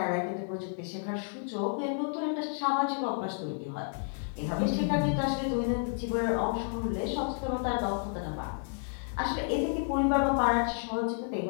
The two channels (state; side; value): silent; right; 57 dB below the other